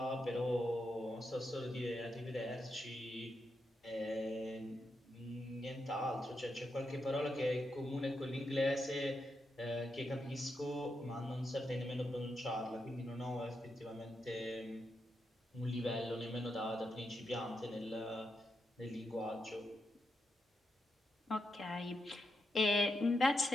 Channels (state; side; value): normal; both; correlation 0.84